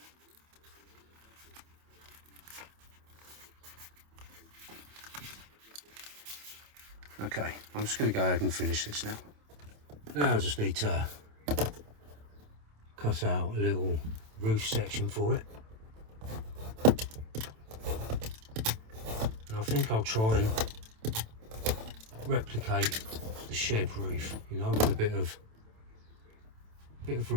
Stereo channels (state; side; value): late; left; 27 ms